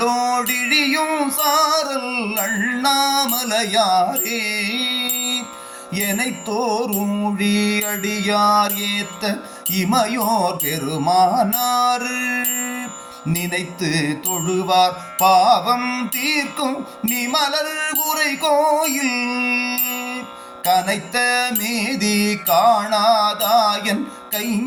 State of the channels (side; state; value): both; identical; correlation 1.00